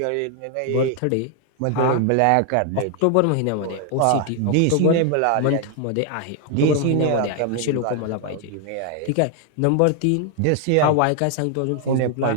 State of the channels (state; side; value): different; both; correlation 0.00